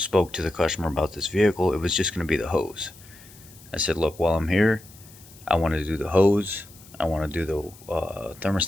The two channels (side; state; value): left; noise; hiss, 22 dB below the sound